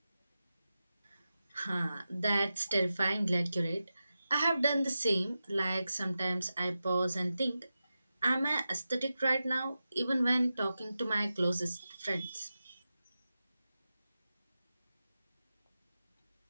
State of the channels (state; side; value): inverted; both; correlation -0.92